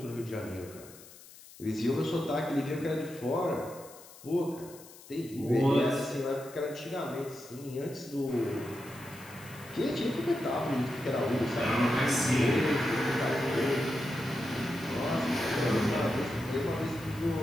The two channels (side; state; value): left; noise; hiss, 20 dB below the sound